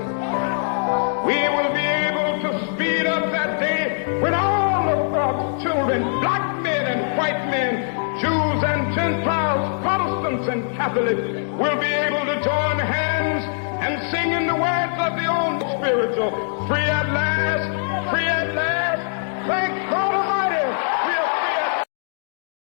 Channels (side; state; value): right; silent; digital silence